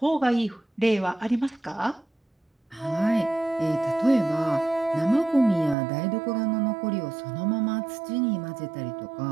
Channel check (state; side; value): drops out; left; at 5.8 s